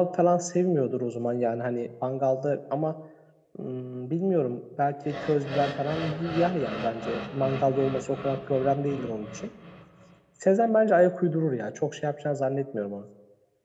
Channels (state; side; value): identical; both; correlation 1.00